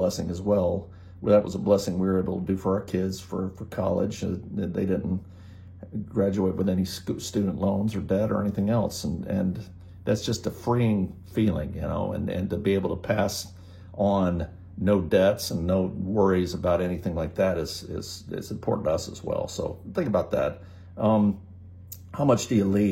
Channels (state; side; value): identical; both; correlation 1.00